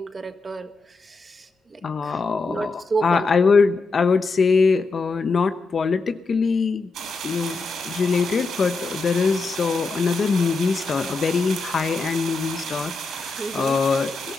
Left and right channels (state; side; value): quieter; right; 3.8 dB